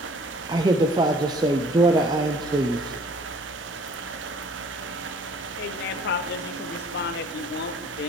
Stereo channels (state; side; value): normal; both; correlation 0.53